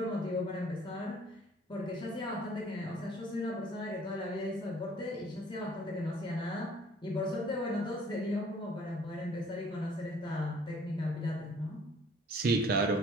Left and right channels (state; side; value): normal; both; correlation 0.56